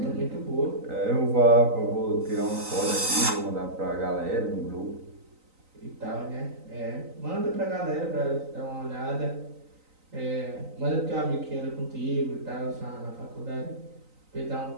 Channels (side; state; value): left; late; 3.9 ms